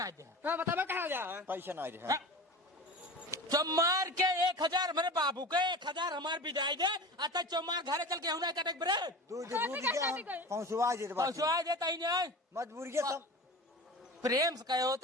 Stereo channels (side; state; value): both; normal; correlation 0.33